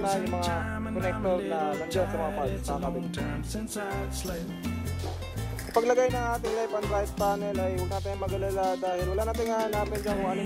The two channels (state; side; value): identical; both; correlation 1.00